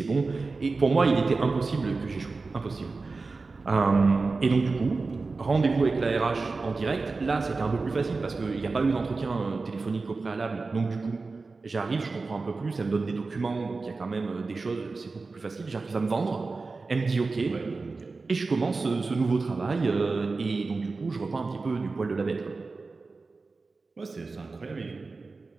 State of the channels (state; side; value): quieter; left; 3.9 dB